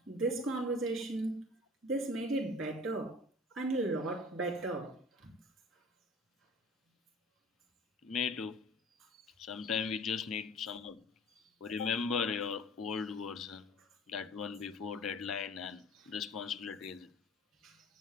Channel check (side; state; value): both; normal; correlation 0.45